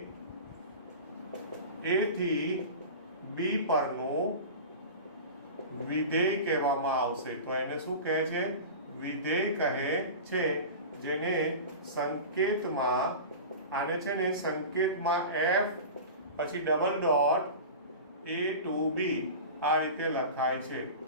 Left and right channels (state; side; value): inverted; both; correlation -0.31